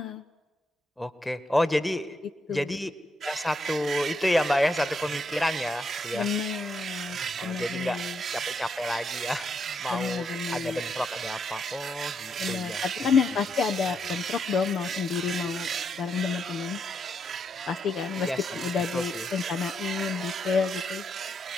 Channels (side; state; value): both; normal; correlation 0.79